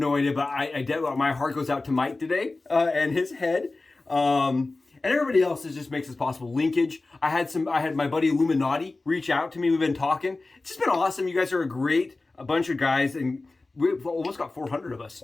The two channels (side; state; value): right; quieter; 3.3 dB